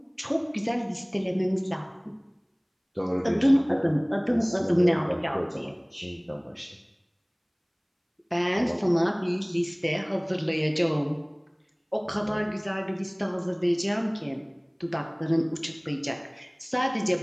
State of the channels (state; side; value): identical; both; correlation 1.00